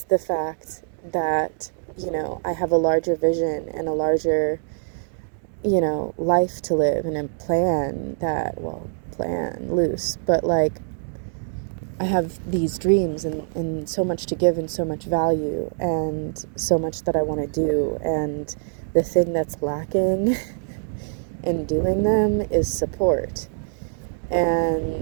the fact that, I have a larger vision and a larger, life to live, and a plan loose, but like, I have these dreams and so much to give and so much value and so much that I want to do, and the thing that's lacking in doing them is support.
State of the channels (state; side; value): silent; left; digital silence